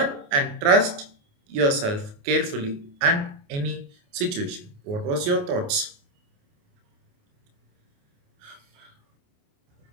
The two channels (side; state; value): left; late; 28 ms